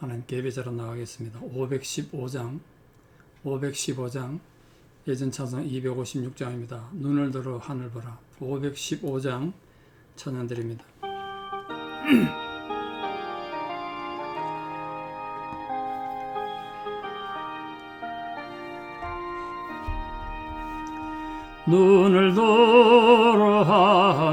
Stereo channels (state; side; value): identical; both; correlation 1.00